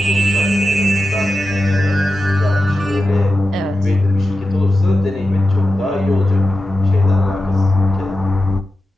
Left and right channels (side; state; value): both; normal; correlation 0.91